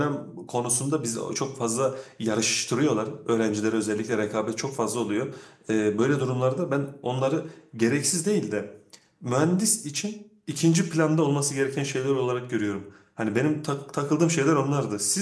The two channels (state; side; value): identical; both; correlation 1.00